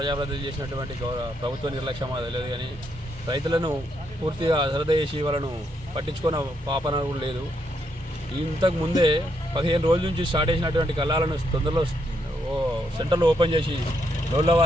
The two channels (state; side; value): normal; both; correlation 0.77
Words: చేసినటువంటి ప్రభుత్వ నిర్లక్ష్యమా తెలియదు కానీ రైతులను పూర్తిగా అశ్రద్ధ చేసి వాళ్ళను పట్టించుకున్న పాపన కూడా లేదు. ఇంతకు ముందే 15 రోజుల నుంచి స్టార్ట్ చేసినటువంటి కళ్ళాలను తొందరలో సెంటర్లు ఓపెన్ చేసి రోజుల